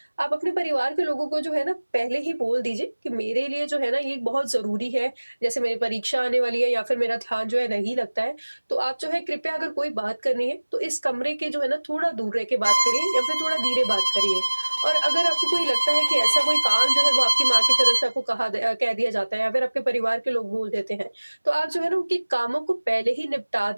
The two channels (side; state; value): both; inverted; correlation -1.00